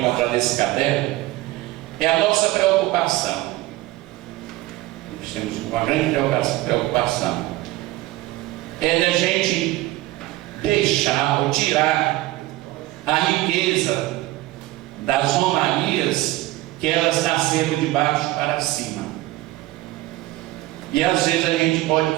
nesse caderno, é a nossa preocupação. Nós temos uma grande preocupação. É da gente deixar ou tirar a riqueza das romarias, que elas nasceram de baixo para cima. E às vezes a gente pode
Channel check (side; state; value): left; quieter; 17.7 dB